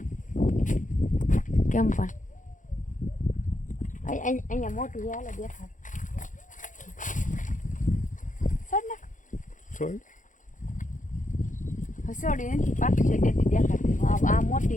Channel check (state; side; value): late; right; 0.37 ms